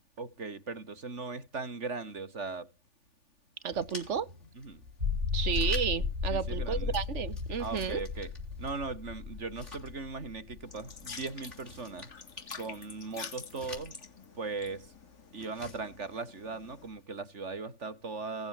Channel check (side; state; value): left; late; 3.4 ms